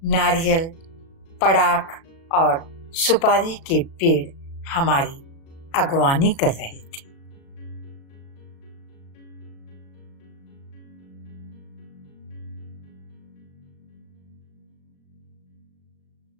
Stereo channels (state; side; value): late; right; 36 ms